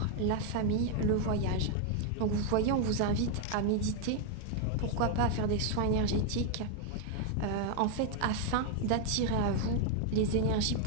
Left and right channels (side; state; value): both; different; correlation 0.01